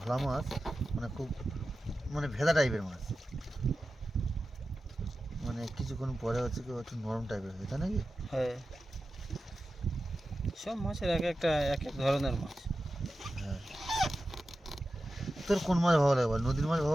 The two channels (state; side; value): normal; both; correlation 0.93